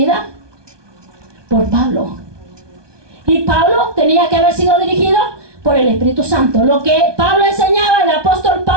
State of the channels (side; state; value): left; late; 1.2 ms